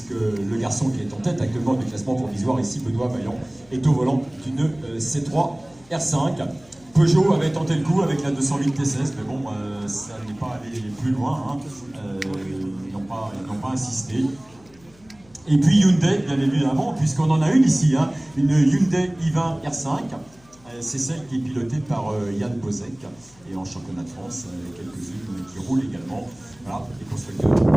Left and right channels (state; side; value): noise; left; hum, 28 dB below the sound